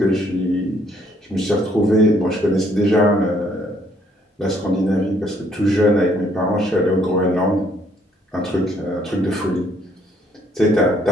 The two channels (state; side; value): normal; both; correlation 0.66